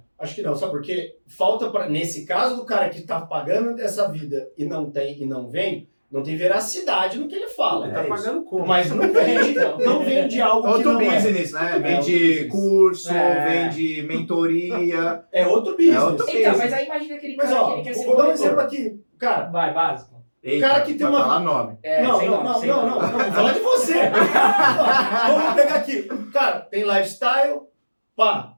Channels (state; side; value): inverted; both; correlation -1.00